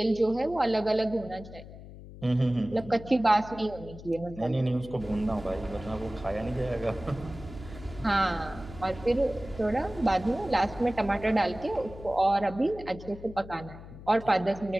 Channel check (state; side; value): noise; left; hum, 15 dB below the sound